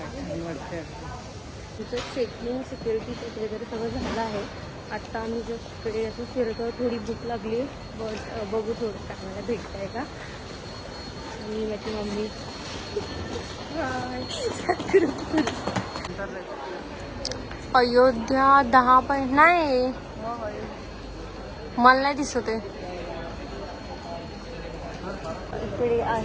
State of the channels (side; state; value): both; identical; correlation 1.00